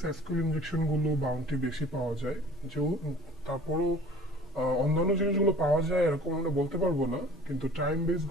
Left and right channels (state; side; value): normal; both; correlation 0.45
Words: এসকিউএল ইনজেকশন গুলো বাউন্টি বেশি পাওয়া যায়। যে তারপরও অন্যান্য জিনিসগুলো পাওয়া যায় এরকম আমরা বলতে পারবো না, কিন্তু টাইম বেস